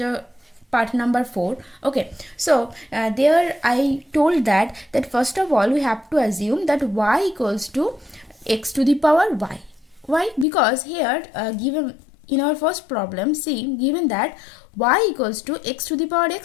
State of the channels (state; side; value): drops out; right; at 10.5 s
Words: part number 4. Okay, so there I told that first of all we have to assume that y equals to x to the power y. Why? Because here given in our first problem, see, given that y equals to x to the power